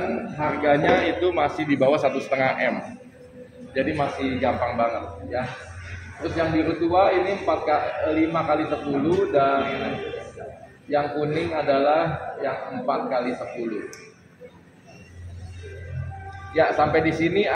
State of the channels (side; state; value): both; identical; correlation 1.00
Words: harganya itu masih di bawah 1,5 M. Jadi masih gampang banget ya. Terus yang biru tua ini 5 x 10 dan yang kuning adalah yang 4 x 10. Ya, sampai di sini